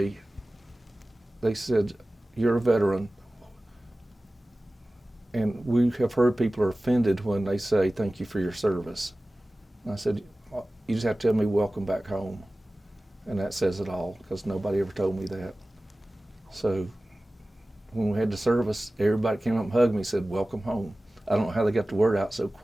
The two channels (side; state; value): both; normal; correlation 0.97